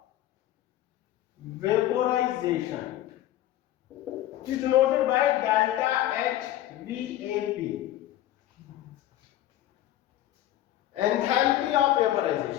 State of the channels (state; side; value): quieter; right; 13.5 dB